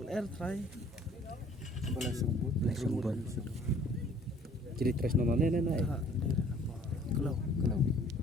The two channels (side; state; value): both; normal; correlation 0.55